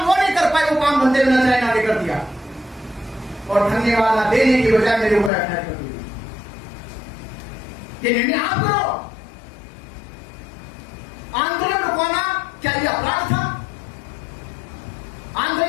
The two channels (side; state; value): right; drops out; at 5.3 s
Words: वो नहीं कर पाए वो काम बंदे बिना चाहे आगे कर दिया, और धन्यवाद ना देने की बजाय मेरे ऊपर अटैक कर दिया। ये निर्णय आप करो। आंदोलन रुकवाना क्या ये अपराध था?